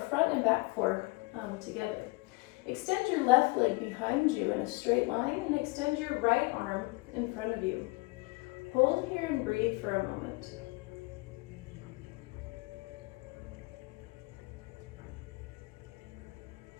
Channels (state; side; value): quieter; right; 25.5 dB